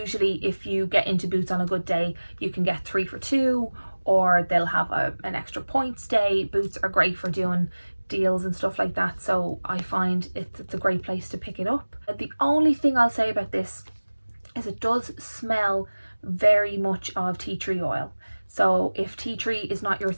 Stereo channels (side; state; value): both; inverted; correlation -1.00